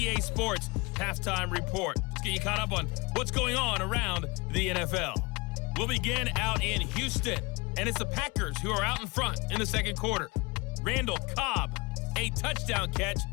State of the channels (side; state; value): right; quieter; 26.3 dB